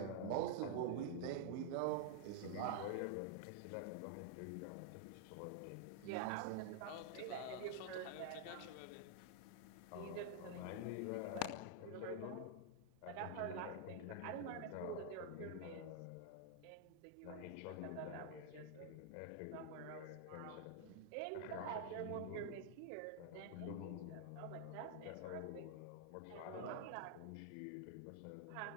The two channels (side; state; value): both; different; correlation -0.01